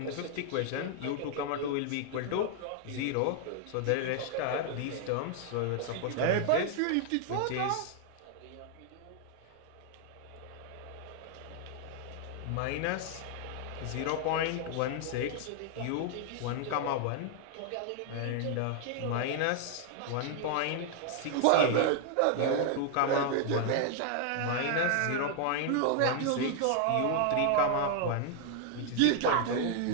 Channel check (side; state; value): both; different; correlation 0.00